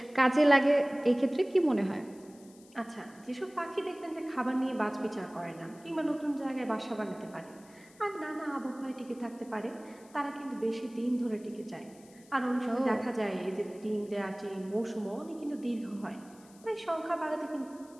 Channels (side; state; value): left; noise; hiss, 26 dB below the sound